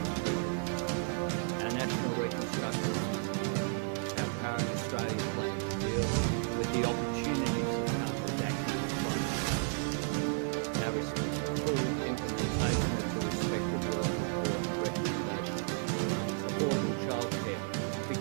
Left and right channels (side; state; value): left; silent; 56 dB below the other